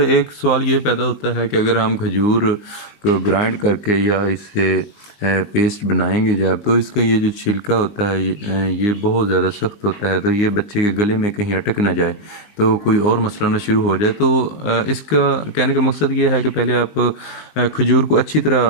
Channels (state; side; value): late; right; 19 ms